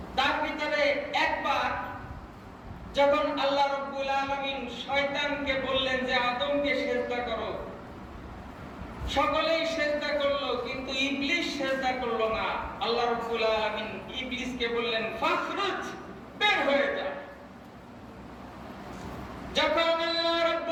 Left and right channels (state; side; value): identical; both; correlation 1.00